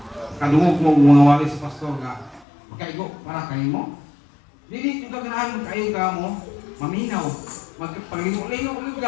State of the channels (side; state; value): right; drops out; at 2.5 s